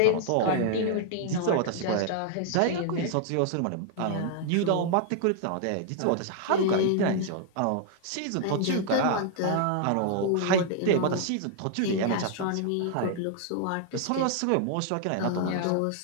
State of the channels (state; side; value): different; both; correlation 0.00